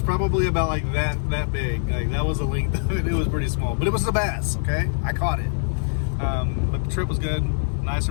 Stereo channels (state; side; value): silent; right; digital silence